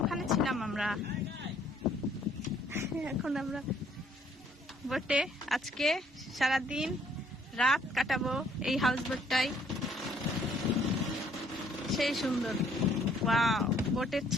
ওখানে ছিলাম আমরা, এখন আমরা বোটে আজকে সারাদিন রাত কাটাবো এই হাউস বোটটাই। সেই সুন্দর, ওয়াও! বোটের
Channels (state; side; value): normal; both; correlation 0.64